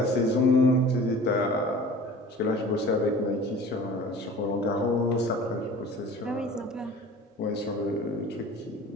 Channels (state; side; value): normal; both; correlation 0.43